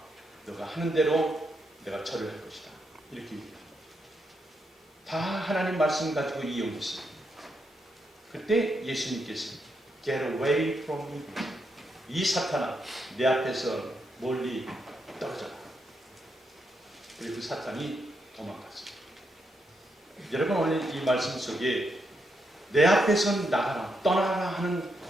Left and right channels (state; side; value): normal; both; correlation 0.81